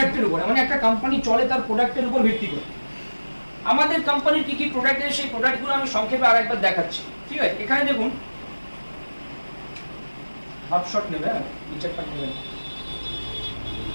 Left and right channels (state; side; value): inverted; both; correlation -1.00